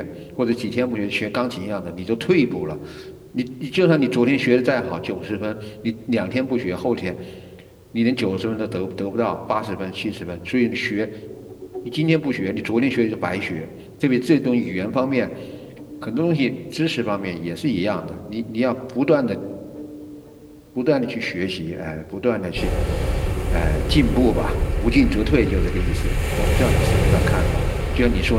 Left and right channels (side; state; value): both; identical; correlation 1.00